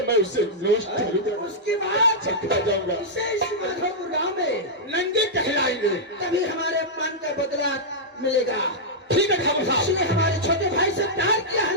मैं उसे नोस्ट करूंगा, उसके बाद चकरा जाऊंगा। इसे इस माधोपुर गांव में नंगे कहलाएंगे। तभी हमारे अपमान का बदला मिलेगा। ठीक है ठाकुर साहब। इसने हमारे छोटे भाई से प्यार किया है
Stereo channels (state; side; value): normal; both; correlation -0.08